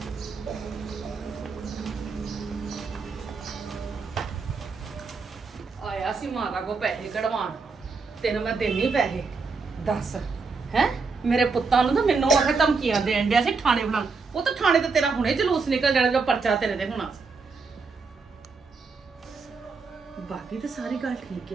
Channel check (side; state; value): left; quieter; 4.6 dB